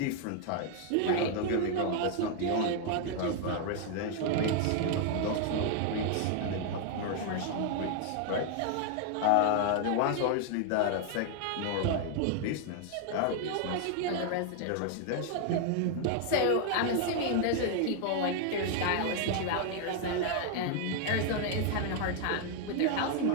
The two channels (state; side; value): different; both; correlation 0.00